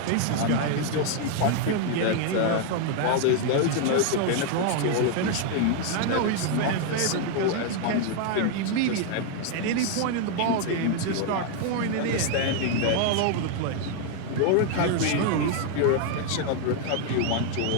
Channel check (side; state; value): both; different; correlation 0.00